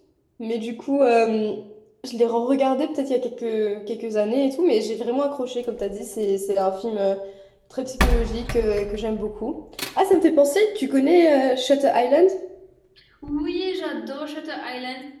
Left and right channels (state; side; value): identical; both; correlation 1.00